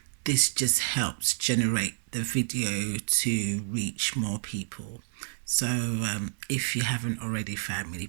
This just helps generate the video to reach more people. So if you haven't already, family,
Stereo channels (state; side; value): silent; left; digital silence